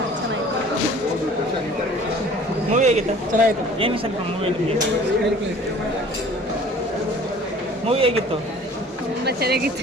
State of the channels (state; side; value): normal; both; correlation 0.49